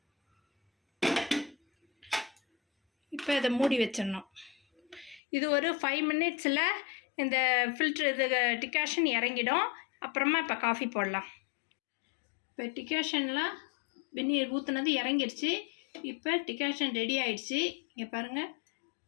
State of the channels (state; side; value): drops out; right; at 5.2 s